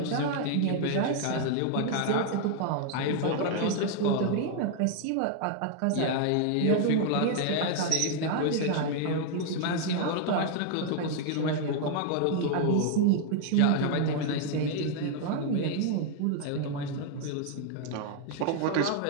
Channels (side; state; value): both; different; correlation 0.00